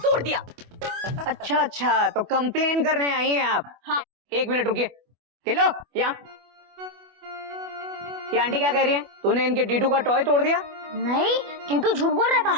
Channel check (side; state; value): left; late; 24 ms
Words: दिया। अच्छा अच्छा, तो कंप्लेन करने आई हैं आप? हाँ। 1 मिनट रुकिए। गिल्लू, यहाँ। ये आंटी क्या कह रही है? तूने इनके टीटू का टॉय तोड़ दिया? नहीं, टीटू झूठ बोल रहा है